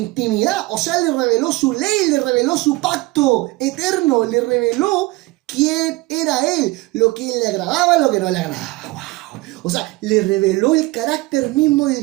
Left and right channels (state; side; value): quieter; left; 21.3 dB